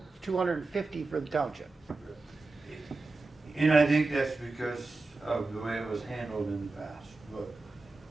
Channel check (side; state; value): left; quieter; 3.5 dB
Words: $250 for the township. And I think that's because of the way it was handled in the past.